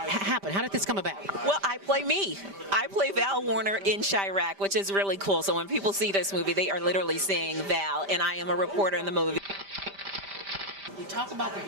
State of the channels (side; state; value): left; late; 5.1 ms